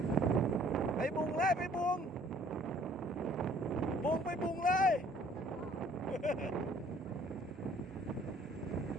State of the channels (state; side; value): normal; both; correlation 0.58